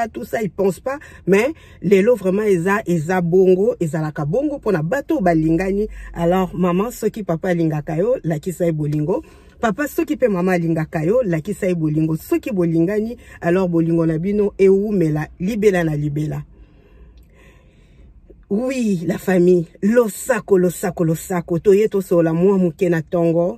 tout ça, ils pensent pas, mais les lots vraiment, eza bongo, ezalaka bongo, pour na bateau balingani. Alors, maman, ce qui papa lingakayo, la qui sa bolingo. Papa, ce qui peut maman lingakayo, la qui sa bolingo. Ce qui bolingani, alors bolingo nabino, et où, mais la, libela na libela. Oui, la famille, losako, toye to sola mwa muke na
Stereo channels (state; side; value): identical; both; correlation 1.00